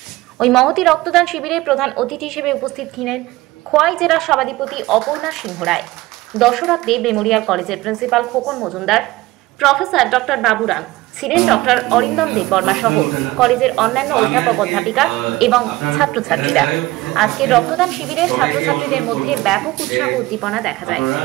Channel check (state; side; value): quieter; left; 19.0 dB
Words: ওই মহতী রক্তদান শিবিরে প্রধান অতিথি হিসেবে উপস্থিত ছিলেন খোয়াই জেলার সভাধিপতি অপর্ণা সিংহ রায়, দশরথদেব মেমোরিয়াল কলেজের principal Khokon Majumdar, professor doctor Baburam, ছিলেন ডক্টর অরিন্দম দেববর্মা সহ কলেজের অন্যান্য অধ্যাপক অধ্যাপিকা এবং ছাত্রছাত্রীরা। আজকে রক্তদান শিবিরের ছাত্রছাত্রীদের মধ্যে ব্যাপক উৎসাহ উদ্দীপনা দেখা যায়।